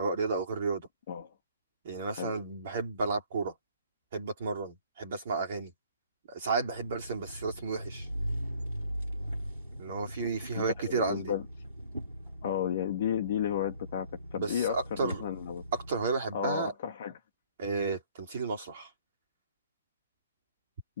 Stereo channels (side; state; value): both; inverted; correlation -0.56